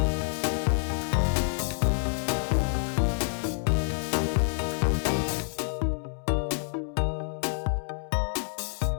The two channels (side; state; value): right; silent; digital silence